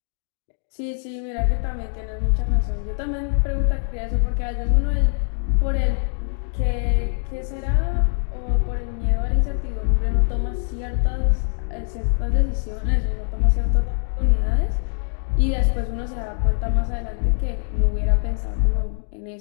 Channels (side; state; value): right; silent; digital silence